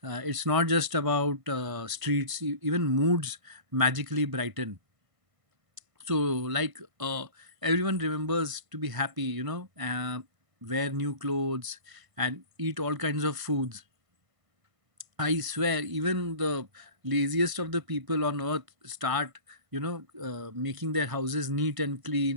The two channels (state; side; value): late; left; 1.5 ms